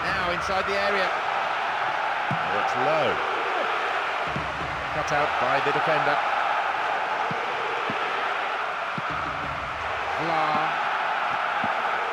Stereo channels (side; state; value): both; identical; correlation 1.00